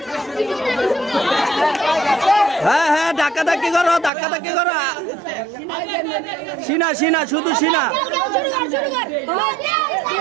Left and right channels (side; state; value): left; drops out; at 4.1 s